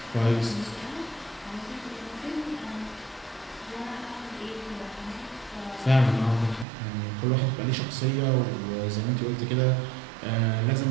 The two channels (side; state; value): left; drops out; at 6.7 s